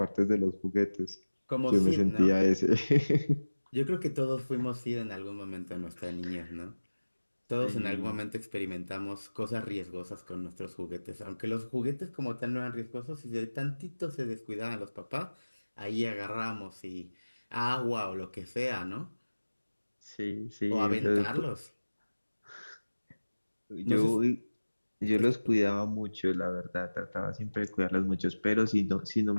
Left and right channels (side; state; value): both; inverted; correlation -1.00